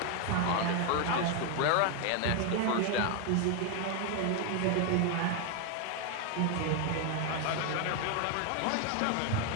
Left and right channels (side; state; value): both; different; correlation 0.01